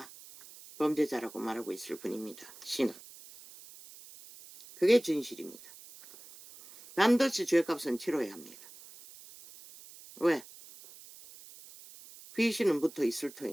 범죄자라고 말하고 있을 뿐입니다. 신은. 그게 진실입니다. 반드시 죄값은 치러야 합니다. 왜? 귀신은 붙어 있을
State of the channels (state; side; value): noise; right; hiss, 19 dB below the sound